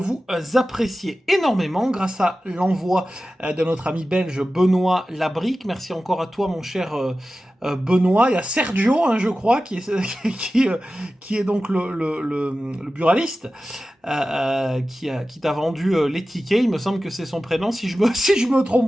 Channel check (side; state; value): both; normal; correlation 0.95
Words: appréciez énormément grâce à l'envoi de notre ami belge Benoît Labrique. Merci encore à toi mon cher Benoît. Il y a Sergio, hein, je crois, qui est, qui est donc le buraliste. Qui t'a vendu les tickets. Il me semble que c'est son prénom, si je me